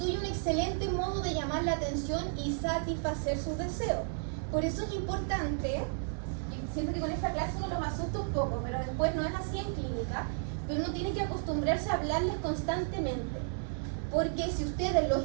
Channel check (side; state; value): left; silent; 56 dB below the other